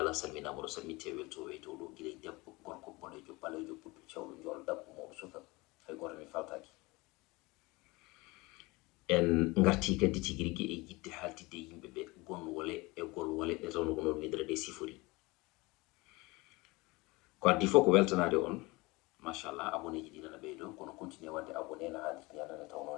salminama ɗo salminte weltoɓe to ɗo guila debbo gorko boɗejo ɓalejo ɓuɗɗo cewɗo jol dabbo mawɗo suka hay goto mi faltaki. En garti kadi tigi rigui e yidde haltidde yimɓeɓe gonwole e golwole ɗe tawno ko noon widere ɗe sifori. Ko addi fof ko weltanade on, machallah abonné ji ɗi nana ɓeydo kono continue wadde abonné no haalirta ni adana taw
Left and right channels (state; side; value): quieter; right; 23.4 dB